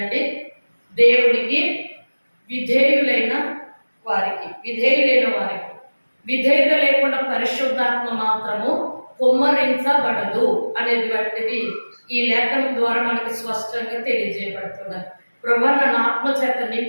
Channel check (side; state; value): both; inverted; correlation -1.00